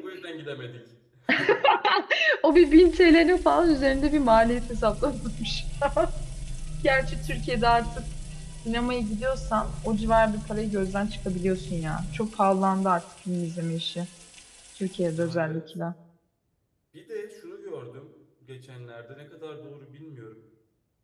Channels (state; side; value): identical; both; correlation 1.00